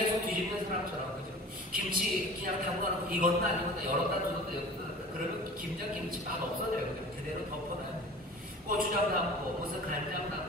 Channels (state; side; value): normal; both; correlation 0.41